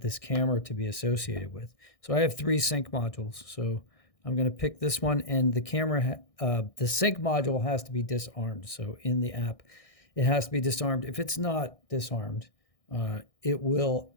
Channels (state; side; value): late; right; 1.6 ms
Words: camera to be associated with. So I have 3 sync modules, so I'm going to pick this one, and the camera, the sync module has to be disarmed. So in the app, it has to be disarmed. If it's not disarmed, it will